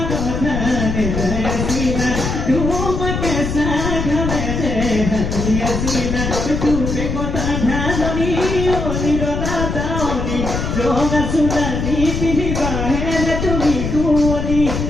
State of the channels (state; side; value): noise; left; rumble, 2 dB below the sound